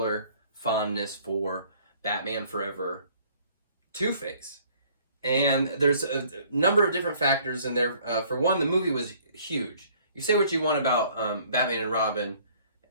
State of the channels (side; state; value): both; inverted; correlation -0.58